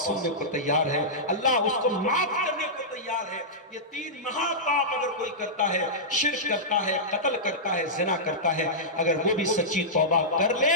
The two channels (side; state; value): both; normal; correlation -0.13